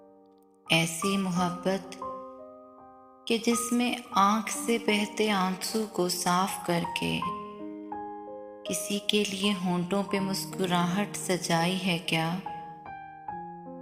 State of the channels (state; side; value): identical; both; correlation 1.00